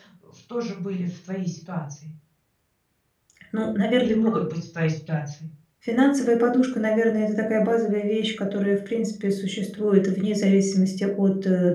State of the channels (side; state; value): both; identical; correlation 1.00